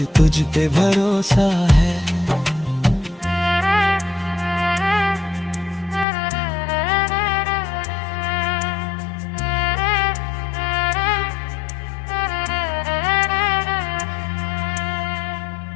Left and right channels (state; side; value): drops out; right; at 6.1 s